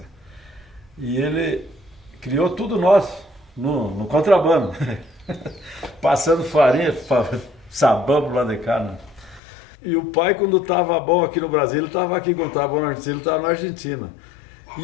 E ele criou tudo nosso no contrabando. Passando farinha, sabão pro lado de cá, né? E o pai, quando estava bom aqui no Brasil, ele estava aqui, quando estava bom na Argentina, ele estava na Argentina.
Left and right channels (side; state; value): right; drops out; at 9.4 s